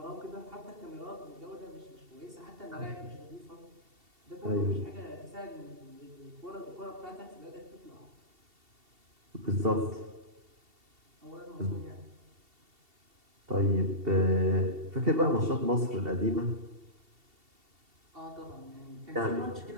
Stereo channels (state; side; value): late; left; 2.7 ms